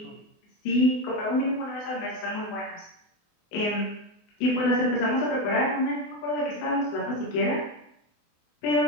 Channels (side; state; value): right; late; 24 ms